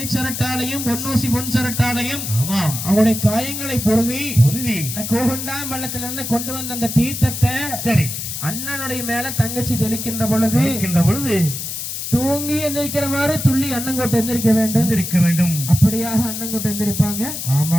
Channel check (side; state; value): left; noise; hiss, 5 dB below the sound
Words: பொன்னூசி பொன் சரட்டாலையும் அவருடைய காயங்களை பொருவி கோகண்டாம் பள்ளத்திலிருந்து கொண்டு வந்த அந்த தீர்த்தத்தை சரி அண்ணனுடைய மேல தங்கச்சி தெளிக்கின்ற பொழுது தூங்கி எந்திரிக்கிற மாதிரி துள்ளி அண்ணங்கோட்டை எந்திரிக்க வேண்டும் அப்படியாக அண்ணங்கோட்டை எந்திரிப்பாங்க